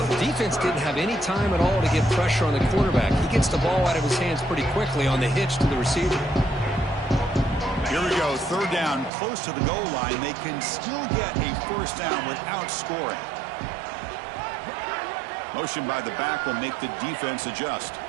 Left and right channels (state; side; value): drops out; left; at 9.1 s